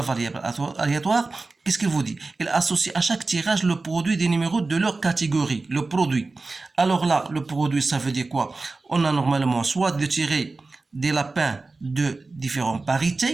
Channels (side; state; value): left; quieter; 3.6 dB